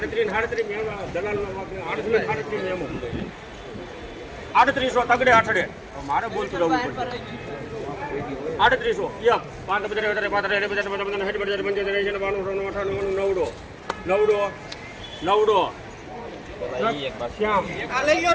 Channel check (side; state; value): both; identical; correlation 1.00